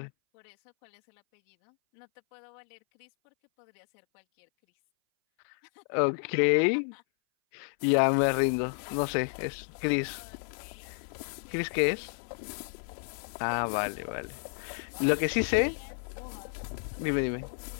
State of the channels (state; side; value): silent; right; 57 dB below the other